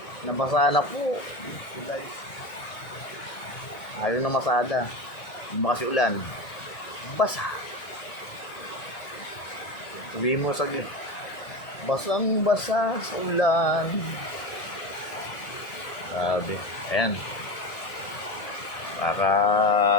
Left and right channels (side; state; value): right; late; 1.9 ms